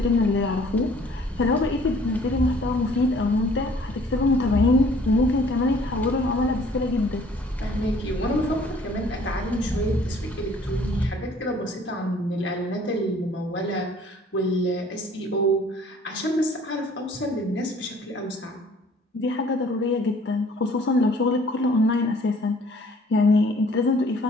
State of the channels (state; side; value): normal; both; correlation 0.56